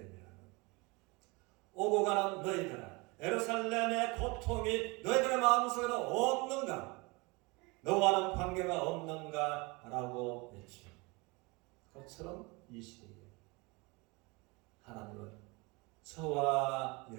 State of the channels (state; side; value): quieter; left; 26.0 dB